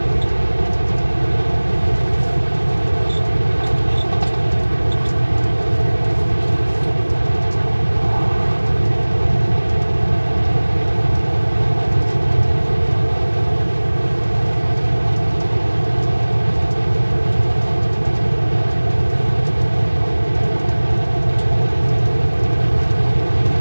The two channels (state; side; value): inverted; both; correlation -1.00